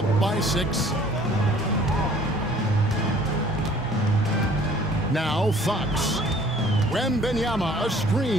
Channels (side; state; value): both; normal; correlation 0.54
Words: by 6. Now Fox. Wembanyama, a